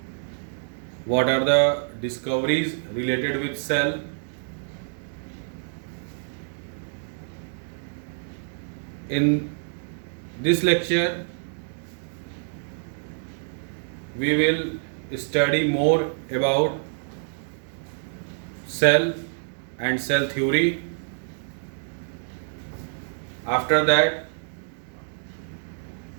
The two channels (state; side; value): silent; left; digital silence